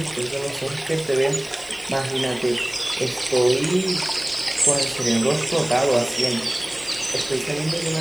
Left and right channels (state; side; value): noise; left; hiss, 20 dB below the sound